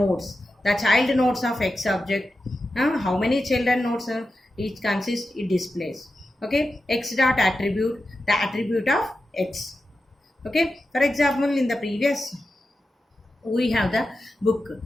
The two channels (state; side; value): normal; both; correlation 0.91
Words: the child nodes of x object, how many children nodes each consists, it displays. Okay, x dot attribute, the attribute of x. Okay, for example, in the previous we have the book,